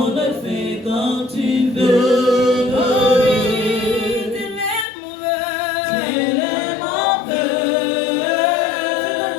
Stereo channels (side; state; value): right; drops out; at 4.9 s